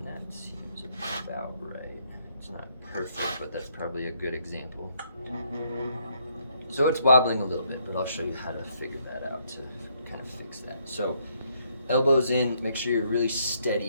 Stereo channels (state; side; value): inverted; both; correlation -0.72